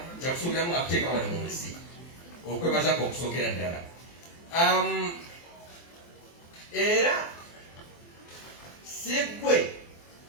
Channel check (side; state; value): right; late; 23 ms